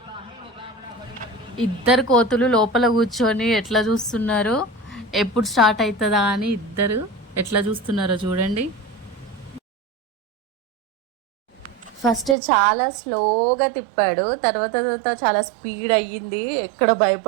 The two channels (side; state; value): left; drops out; at 12.4 s